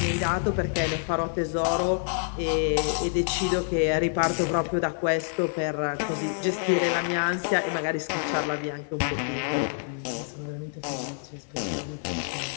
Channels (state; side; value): silent; right; digital silence